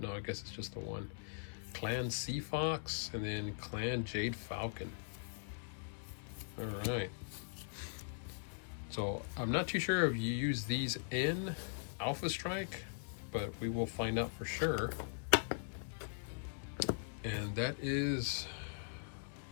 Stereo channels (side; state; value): right; silent; digital silence